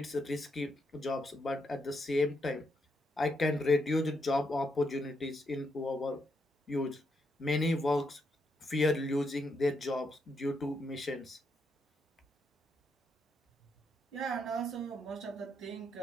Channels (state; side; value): normal; both; correlation 0.80